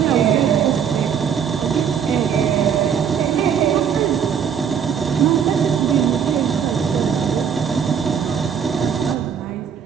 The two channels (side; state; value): left; quieter; 7.7 dB